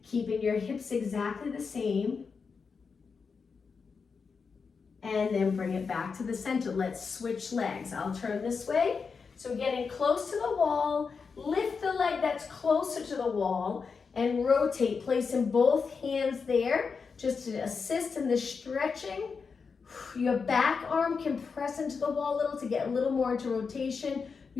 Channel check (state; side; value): quieter; right; 5.3 dB